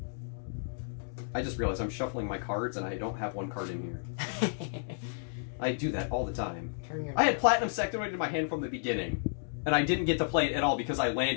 I just realized I'm shuffling my cards and I don't have one card in here. I do that all the time. I had Platinum Sectoid in my hand from the beginning, and I didn't get to play it at all because I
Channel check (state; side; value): silent; right; digital silence